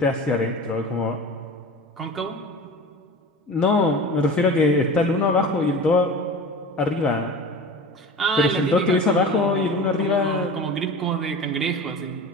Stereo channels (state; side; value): normal; both; correlation 0.34